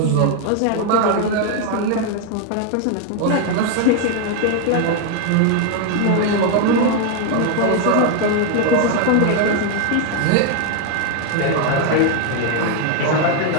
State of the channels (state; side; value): different; both; correlation 0.01